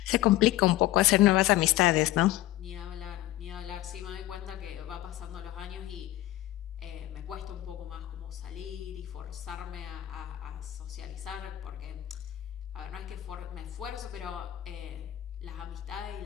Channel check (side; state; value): right; quieter; 15.0 dB